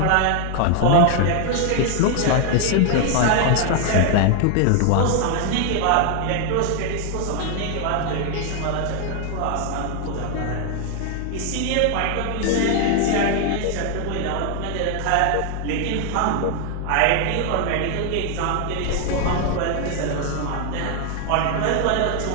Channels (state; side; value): different; both; correlation 0.00